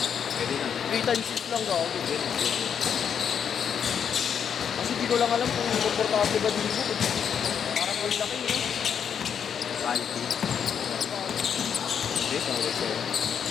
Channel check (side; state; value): right; quieter; 7.7 dB